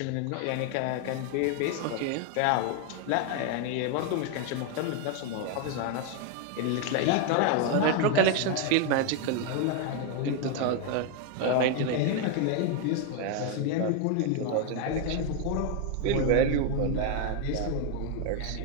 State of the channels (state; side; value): different; both; correlation 0.01